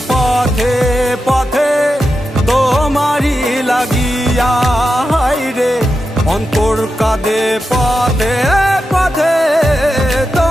পথে পথে তোমারই লাগিয়া। হায়রে অন্তর কাঁদে পথে পথে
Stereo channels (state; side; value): normal; both; correlation 0.89